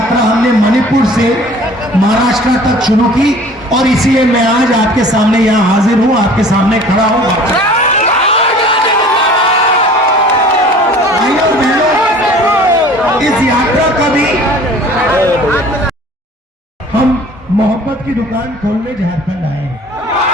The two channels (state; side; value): normal; both; correlation 0.48